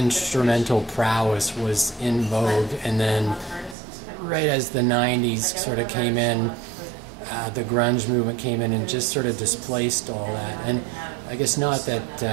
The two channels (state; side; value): drops out; left; at 3.8 s